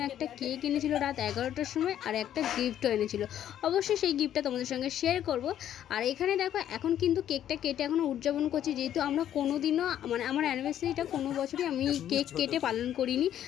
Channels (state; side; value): quieter; right; 10.9 dB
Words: একটা কেক এনেছিল রাত 11টার সময়, আর একটা গিফটও এনেছিল। অবশ্যই সেই গিফটটা তোমাদের সঙ্গে শেয়ার করব। আর এখানে দেখো, এখন কিন্তু কেকটা কেটে এখনও উদযাপন করছি, যেহেতু আমরা কোনো দিনও মানে আমার অ্যানিভার্সারিটা কোনো বছরই আমি কেক কেটে পালন করিনি।